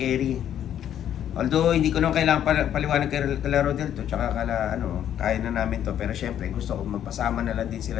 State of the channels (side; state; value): right; quieter; 10.3 dB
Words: Although hindi ko naman kailangan paliwanag kay Rodel to, tsaka kaya na namin to. Pero syempre, gusto ko magpasama na lang din